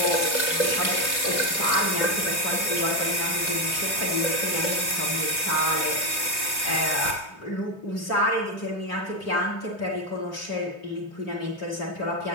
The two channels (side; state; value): right; late; 3.2 ms